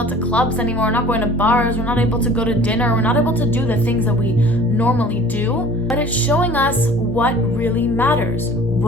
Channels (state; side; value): normal; both; correlation 0.47